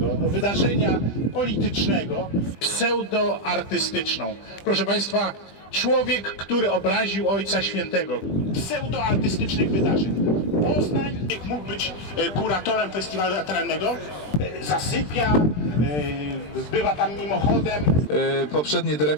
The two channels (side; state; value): right; late; 20 ms